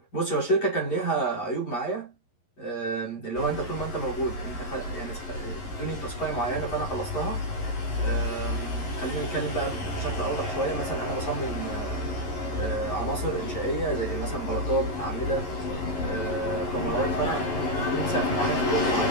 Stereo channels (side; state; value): right; late; 11 ms